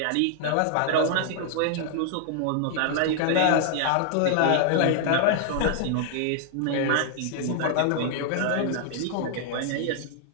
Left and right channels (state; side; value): different; both; correlation 0.00